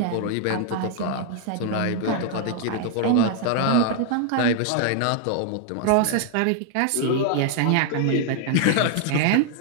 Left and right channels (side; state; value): both; different; correlation 0.00